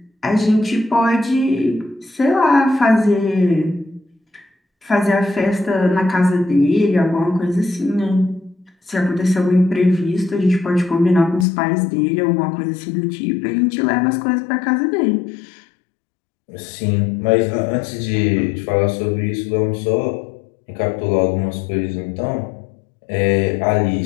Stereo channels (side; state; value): right; drops out; at 11.5 s